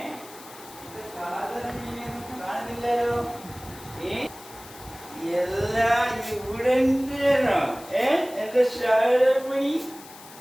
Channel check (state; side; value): noise; left; hiss, 18 dB below the sound